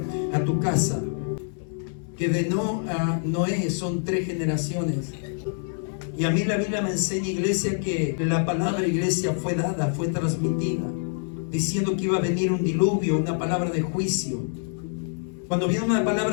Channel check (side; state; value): right; silent; digital silence